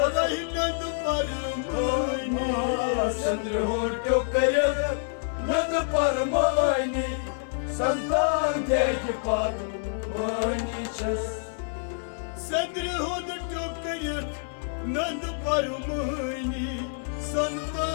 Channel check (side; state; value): right; silent; digital silence